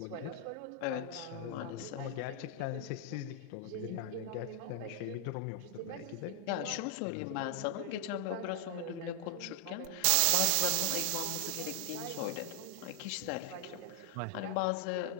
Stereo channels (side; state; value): both; different; correlation 0.00